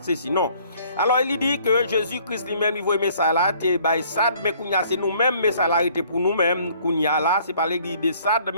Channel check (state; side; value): inverted; both; correlation -0.58